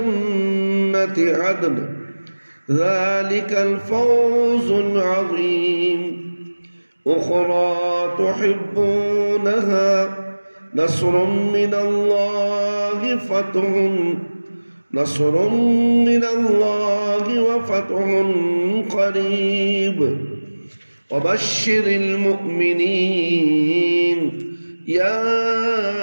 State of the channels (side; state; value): both; inverted; correlation -1.00